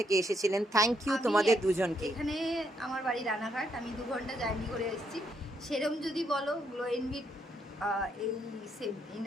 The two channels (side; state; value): both; normal; correlation 0.75